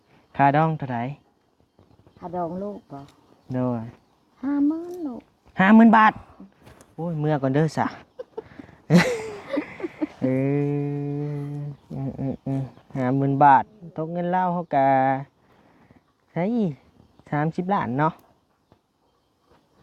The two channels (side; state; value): both; identical; correlation 1.00